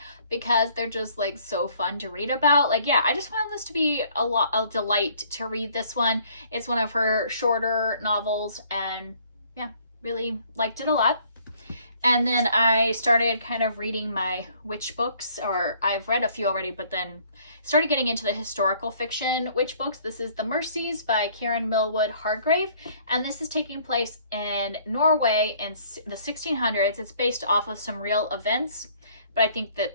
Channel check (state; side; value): inverted; both; correlation -0.60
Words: because they're just like so fun to read about. Like, yeah, I just found this to be a delight to read this one. It's one of her shorter novels, and yeah, really liked it a lot. And then I started kind of reading my witch books, or I've read a few already, but then started getting into the historical fiction witch books. This is The Mercies by Karen Millwood Hargrave, and this is taking place in Norway in the 1600s. It's based off of some real events, but I think that